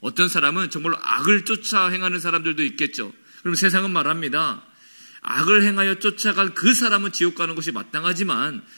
어떤 사람은 정말로 악을 쫓아 행하는 사람들도 있겠죠. 그럼 세상은 말합니다. 악을 행하여 쫓아간 그 사람은 지옥 가는 것이 마땅하지만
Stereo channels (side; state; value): both; inverted; correlation -1.00